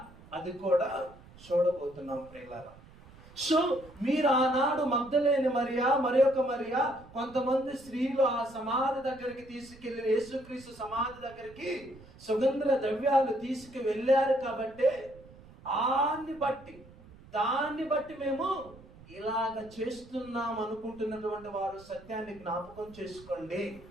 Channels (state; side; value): noise; right; rumble, 22 dB below the sound